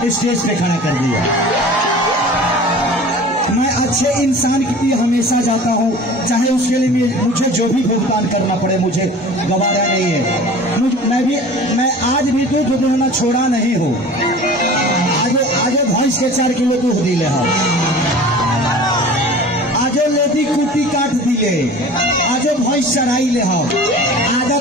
स्टेज पे खड़ा कर दिया। मैं अच्छे इंसान के लिए हमेशा जाता हूँ, चाहे उसके लिए मुझे जो भी भुगतान करना पड़े, मुझे गवारा नहीं है। मैं आज भी दूध दुहना छोड़ा नहीं हूँ। आगे भैंस के 4 किलो दूध दिले हम, आजो लेदी कुटी काट दिले, आजो भैंस चराई ले हम,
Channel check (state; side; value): normal; both; correlation 0.41